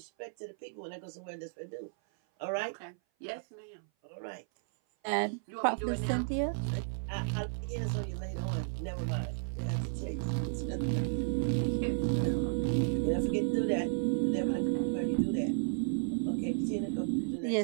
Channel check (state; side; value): silent; left; 55 dB below the other